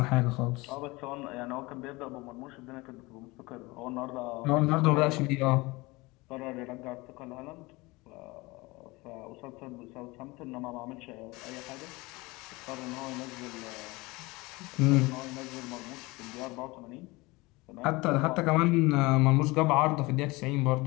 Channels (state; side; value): quieter; right; 23.1 dB